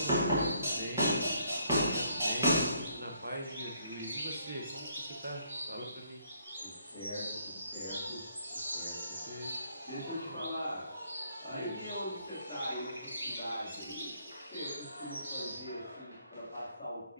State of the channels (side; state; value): both; inverted; correlation -0.68